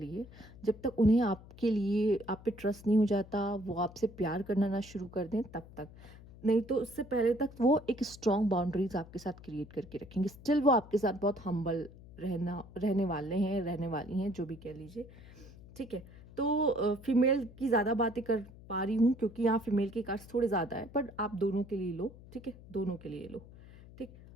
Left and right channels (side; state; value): left; noise; hum, 19 dB below the sound